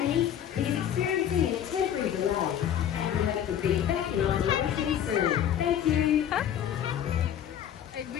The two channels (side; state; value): right; quieter; 9.9 dB